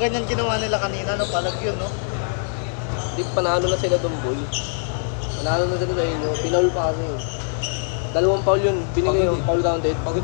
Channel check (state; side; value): silent; right; 64 dB below the other